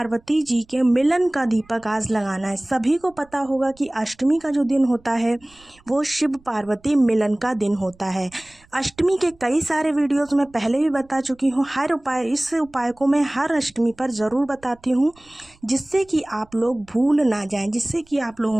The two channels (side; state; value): right; noise; rumble, 29 dB below the sound